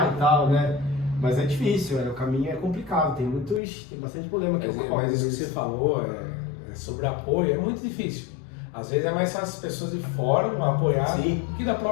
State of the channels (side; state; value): right; drops out; at 3.6 s